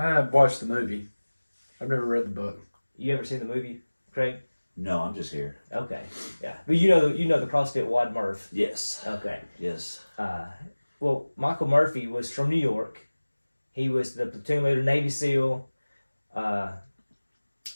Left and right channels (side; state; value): both; inverted; correlation -1.00